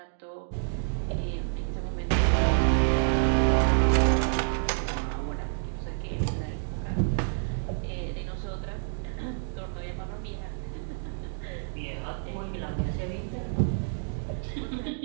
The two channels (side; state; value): left; silent; digital silence